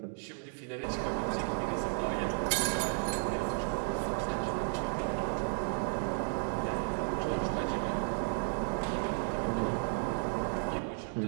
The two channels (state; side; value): silent; left; 55 dB below the other